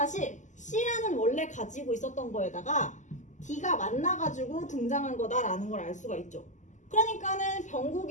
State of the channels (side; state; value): right; late; 0.35 ms